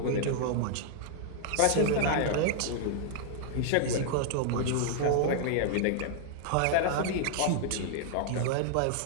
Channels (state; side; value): different; both; correlation -0.01